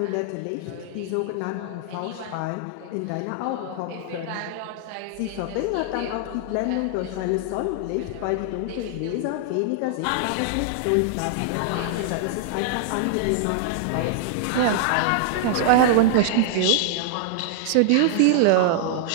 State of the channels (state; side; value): different; both; correlation -0.01